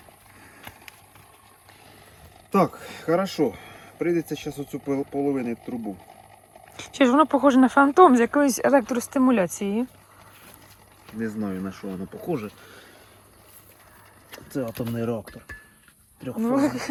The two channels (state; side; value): identical; both; correlation 1.00